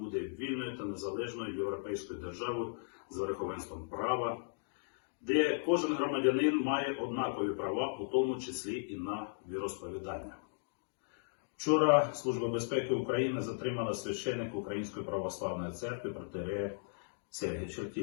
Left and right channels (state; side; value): silent; right; digital silence